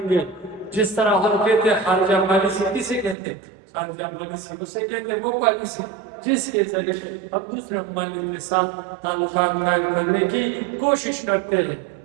گے؟ جس طرح ہم کہتے ہیں خارجہ پالیسی کسے کہتے ہیں؟ خارجہ پالیسی اسے کہتے ہیں وہ پالیسی جس کے ذریعے ہم دوسرے ممالک کے ساتھ تعلقات قائم کرنے کی کوشش کرتے ہیں.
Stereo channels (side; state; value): left; drops out; at 3.2 s